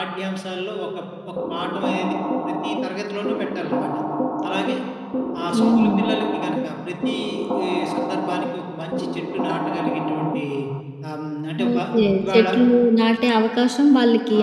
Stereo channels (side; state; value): both; identical; correlation 1.00